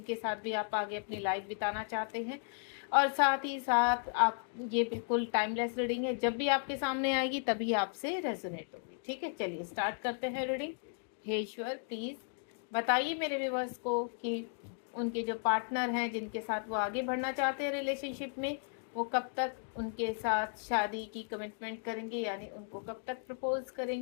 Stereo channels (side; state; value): right; silent; 54 dB below the other